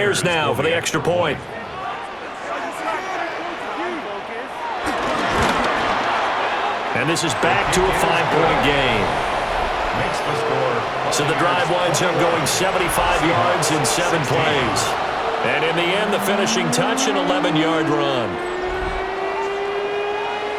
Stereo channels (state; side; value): identical; both; correlation 1.00